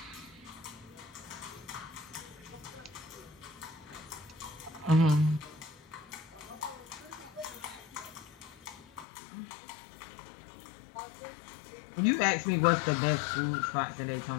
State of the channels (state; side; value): drops out; right; at 9.1 s